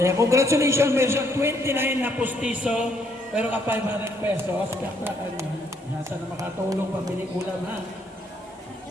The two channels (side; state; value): both; normal; correlation 0.70